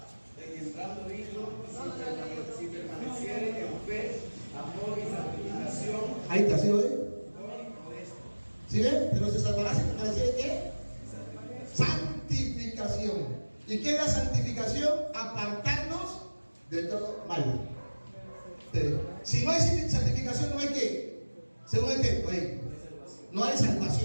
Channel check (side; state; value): both; inverted; correlation -1.00